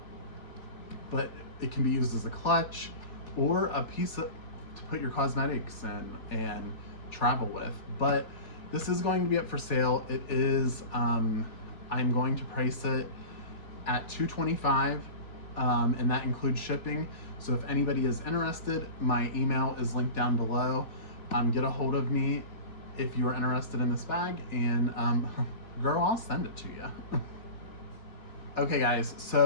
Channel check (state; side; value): late; right; 3.4 ms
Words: But it can be used as a clutch or a piece to put your cosmetics in and travel with. But this is going to be up for sale. It is, I'm going to price it at $225. And that includes shipping. So if anybody is interested, my email is linked down below. Get a hold of me if you're interested in this bag, and girl, I'll send it to you. Okay guys,